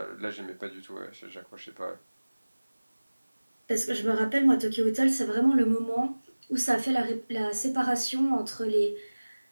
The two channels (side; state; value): both; inverted; correlation -1.00